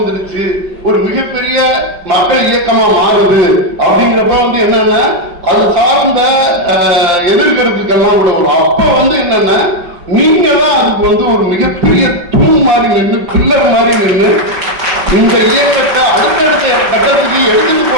ஒரு மிகப்பெரிய மக்கள் இயக்கமா மாறுது அப்படிங்கிறப்ப வந்து என்னன்னா அது சார்ந்த எதிர்கருத்துக்கெல்லாம் கூட வரும். அப்ப வந்து என்னன்னா நீங்க தான் அதுக்கு வந்து ஒரு மிகப்பெரிய தூண் மாதிரி நின்று பில்லர் மாதிரி நின்று இந்த இயக்கத்தை அடுத்தடுத்த கட்டத்துக்கு எடுத்துட்டு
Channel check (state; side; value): late; left; 5.3 ms